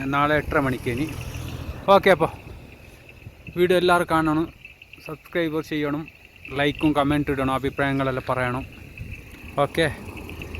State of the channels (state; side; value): identical; both; correlation 1.00